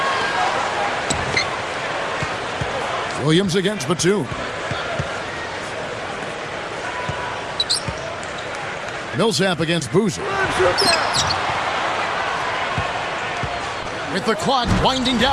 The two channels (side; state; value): both; identical; correlation 1.00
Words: Williams against Batum. Millsap against Boozer. With the clock winding